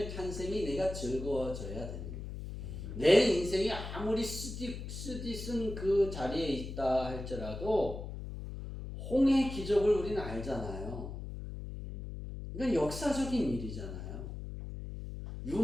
탄생이 내가 즐거워져야 되는 거예요. 내 인생이 아무리 쓰디쓴 그 자리에 있다 할지라도 홍해의 기적을 우리는 알잖아요. 이건 역사적인 일이잖아요.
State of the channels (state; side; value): noise; left; hum, 8 dB below the sound